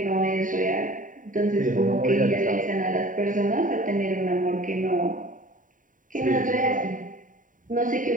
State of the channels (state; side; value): late; left; 0.39 ms